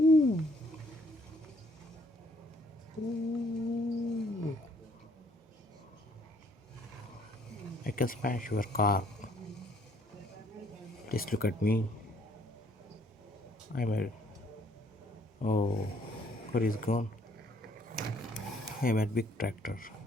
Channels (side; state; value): both; normal; correlation 0.64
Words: Woo! I can smash your car. Please look at me. I'm a. Oh, car is gone. I'm a big tractor.